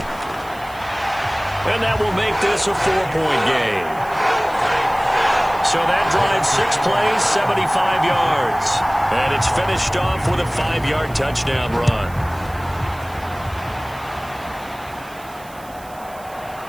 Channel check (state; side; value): noise; right; hiss, 22 dB below the sound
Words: And that will make this a 4-point game. So that drives 6 plays, 75 yards. And it's finished off with a 5-yard touchdown run.